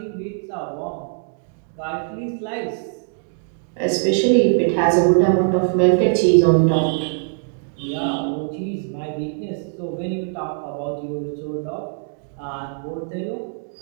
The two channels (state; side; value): silent; left; 64 dB below the other